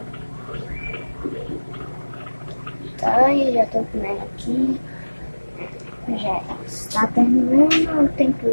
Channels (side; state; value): both; inverted; correlation -1.00